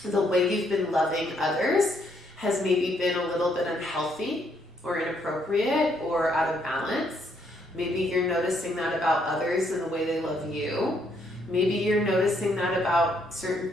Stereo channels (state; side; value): normal; both; correlation 0.72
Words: the way you've been loving others has maybe been a little bit unhealthy or inappropriate or out of balance. Maybe you're noticing that about others and the way they love you. Maybe you're noticing that about certain